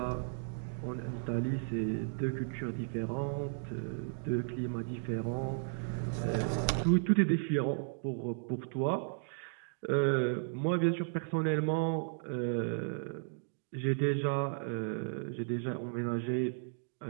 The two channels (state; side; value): silent; left; digital silence